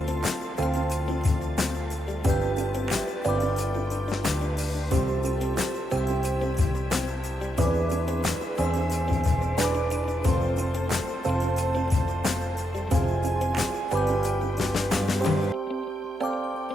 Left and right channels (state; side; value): normal; both; correlation 0.83